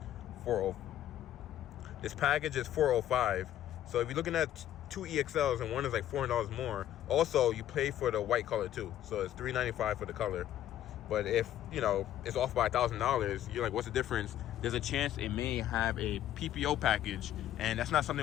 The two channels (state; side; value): quieter; right; 12.0 dB